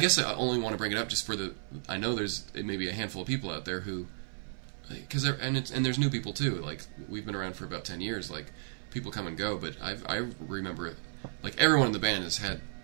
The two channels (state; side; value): silent; left; 56 dB below the other